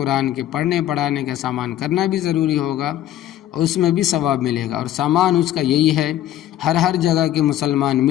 کے پڑھنے پڑھانے کا سامان کرنا بھی ضروری ہوگا اور اس میں بھی ثواب ملے گا، اور سامان اس کا یہی ہے ہر جگہ کے مسلمان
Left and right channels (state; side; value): quieter; right; 12.6 dB